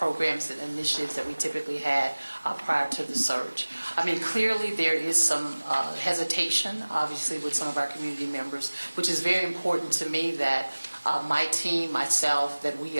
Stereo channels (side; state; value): both; inverted; correlation -1.00